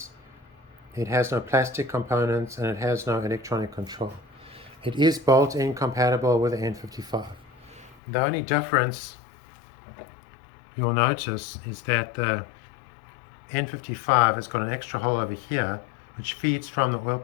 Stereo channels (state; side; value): drops out; right; at 8.0 s